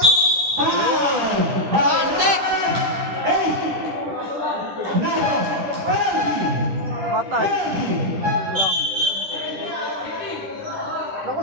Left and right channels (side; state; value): left; late; 9.7 ms